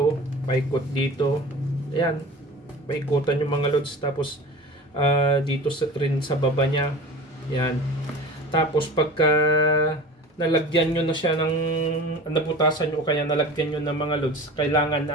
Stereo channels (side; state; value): both; normal; correlation 0.36